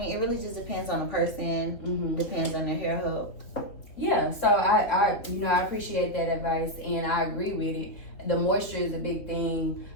it really just depends on the person, depends on their hair health. Yeah, so I appreciate that advice, and I agree with it. The moisture is a big thing.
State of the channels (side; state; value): right; late; 3.8 ms